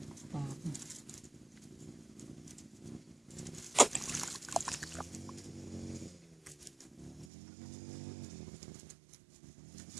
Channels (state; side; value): drops out; left; at 7.2 s